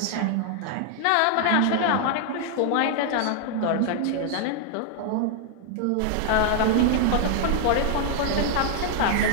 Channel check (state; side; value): different; both; correlation 0.00